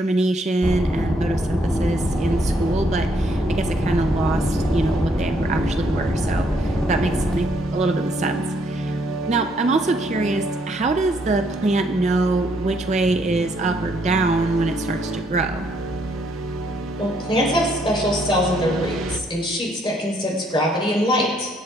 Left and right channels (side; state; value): both; normal; correlation 0.70